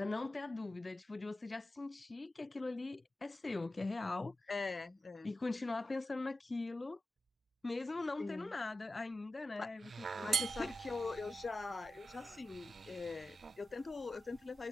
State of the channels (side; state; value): both; normal; correlation 0.93